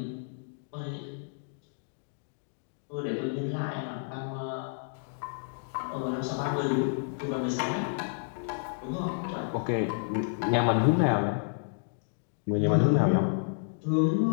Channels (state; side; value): silent; right; digital silence